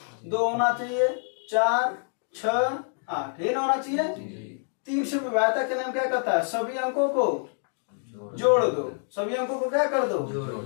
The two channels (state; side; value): silent; right; 60 dB below the other